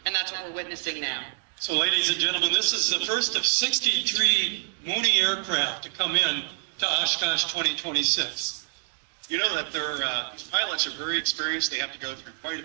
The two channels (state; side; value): silent; left; digital silence